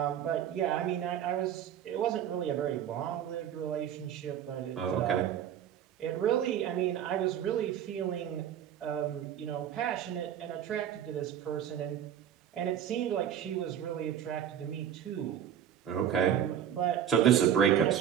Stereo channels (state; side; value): quieter; left; 9.7 dB